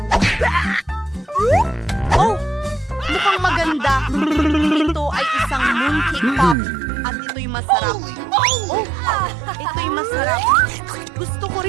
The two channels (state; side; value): drops out; left; at 6.6 s